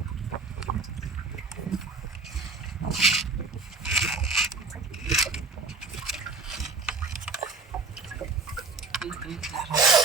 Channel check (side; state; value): left; quieter; 3.9 dB